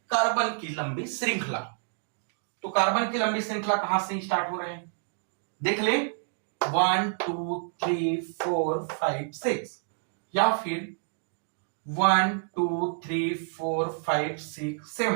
कार्बन की लंबी श्रृंखला। तो कार्बन की लंबी श्रृंखला कहां से स्टार्ट हो रहे हैं, देख ले 1 2 3 4 5 6, या फिर 1 2 3 4 5 6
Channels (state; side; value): silent; left; digital silence